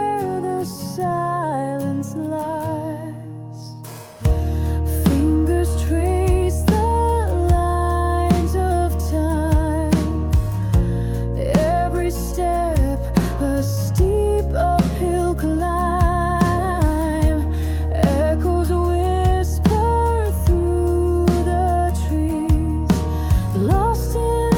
the silence lies. Fingers trace the lines of time, every step a steep uphill climb, echoes whisper through the trees, lost in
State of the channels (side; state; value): both; identical; correlation 1.00